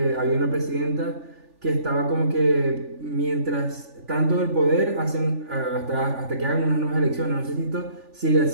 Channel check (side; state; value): left; late; 3.4 ms